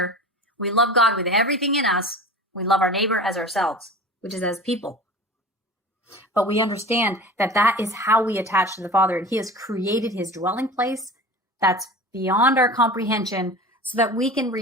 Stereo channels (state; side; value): normal; both; correlation 0.36